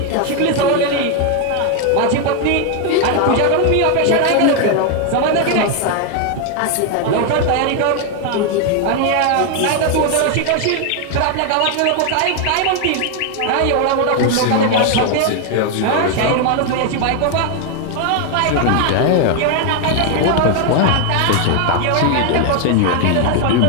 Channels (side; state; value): both; different; correlation 0.01